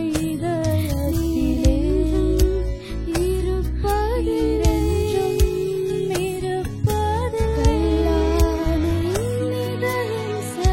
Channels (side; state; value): both; identical; correlation 1.00